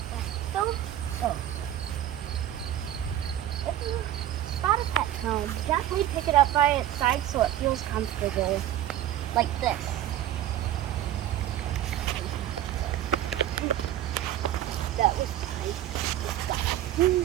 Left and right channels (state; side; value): quieter; left; 12.1 dB